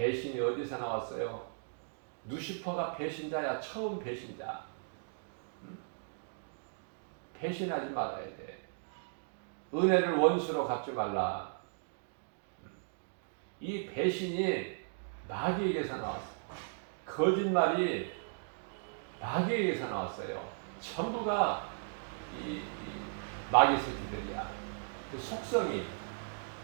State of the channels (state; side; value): silent; left; digital silence